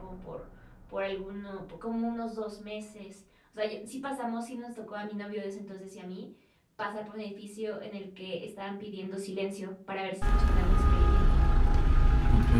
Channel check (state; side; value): identical; both; correlation 1.00